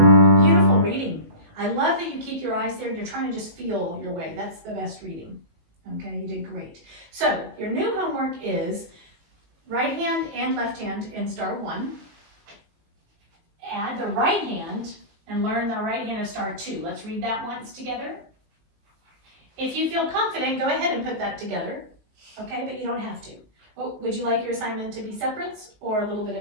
Beautiful reading. I love that you keep your eyes there. You're trying to just feel your way. That's the best reading. Okay, you did great. So your new homework is right hand and left hand in star 1. Add the right hand and learn the right hand of star 2. Let's read that once together. If you feel confident, go ahead and put that together. Okay, but you don't have to. Oh, would you like your assignment to be separates or a little bit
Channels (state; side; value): late; left; 19 ms